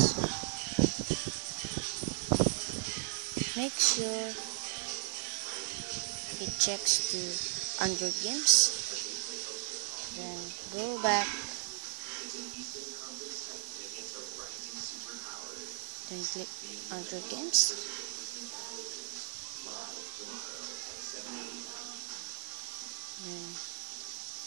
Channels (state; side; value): silent; left; digital silence